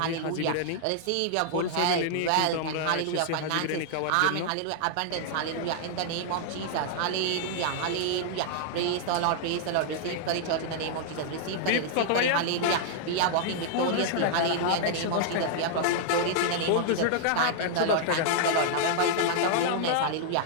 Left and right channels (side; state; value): both; different; correlation -0.01